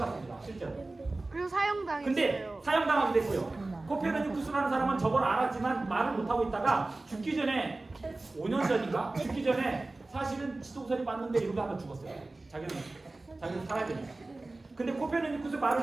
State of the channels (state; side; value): quieter; left; 3.1 dB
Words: 실제로. 그리고 사형당했어요. 근데 사형당하게 됐고요. 코페르니쿠스라는 사람은 저걸 알았지만 말을 못하고 있다가 죽기 전에 5년 전인가? 죽기 전에 사실은 지도서리 맞는데 이러고 하다 죽었어요. 자기는 살아야 되니까. 근데 코페르니쿠스